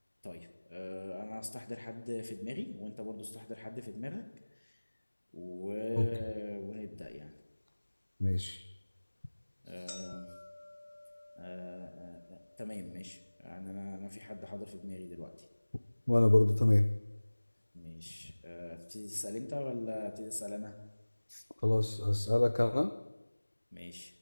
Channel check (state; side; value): inverted; both; correlation -1.00